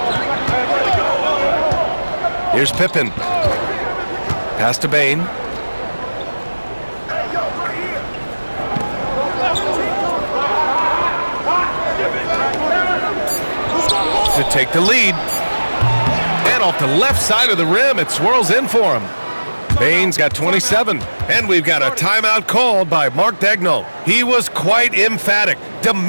Here's Pippen. Pass to Bain. to take the lead. And off the left side of the rim, it swirls in for him. Bain's got 27, and we've got a timeout called by Mark Daigneault. He was quite emphatic,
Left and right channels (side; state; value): both; inverted; correlation -1.00